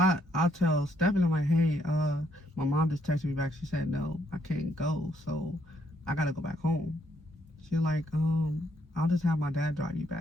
tell Stephanie, I'm like, hey, my mom just texted me back. She said, no, I can't go. So I gotta go back home. She's like, I'll just have my dad drive you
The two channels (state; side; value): normal; both; correlation 0.72